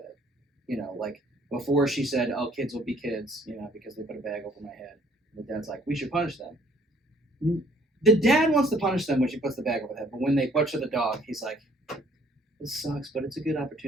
You know, like before she said, "Oh, kids will be kids," you know, because they put a bag over my head. And the dad's like, "We should punish them." The dad wants to punish them when she puts the bag over the head, but when they butcher the dog, he's like, "This sucks, but it's a good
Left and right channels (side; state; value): both; normal; correlation 0.61